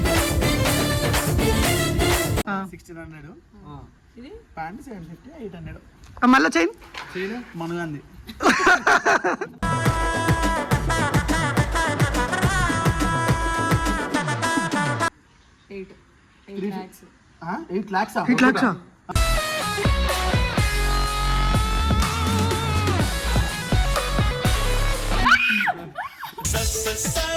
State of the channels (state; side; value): identical; both; correlation 1.00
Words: ప్యాంట్ 750 800 మళ్ళీ చైన్ మనగాంది. $8 lakhs.